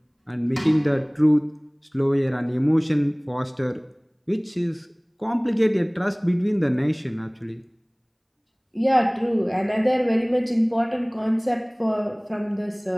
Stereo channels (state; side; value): identical; both; correlation 1.00